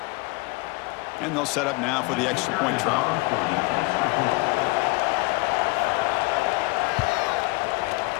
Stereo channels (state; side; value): quieter; right; 25.2 dB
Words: And they'll set up now for the extra point try.